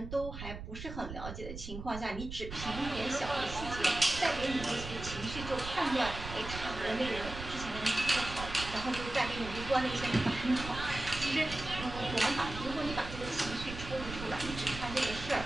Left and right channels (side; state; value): right; noise; rumble, 9 dB below the sound